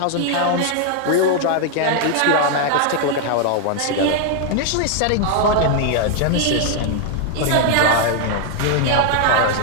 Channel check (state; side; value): different; both; correlation 0.00